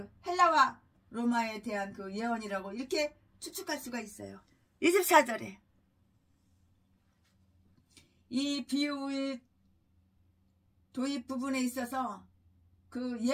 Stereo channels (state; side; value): identical; both; correlation 1.00